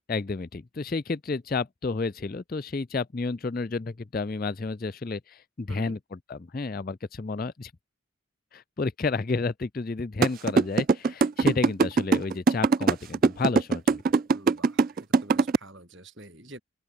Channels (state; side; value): normal; both; correlation 0.54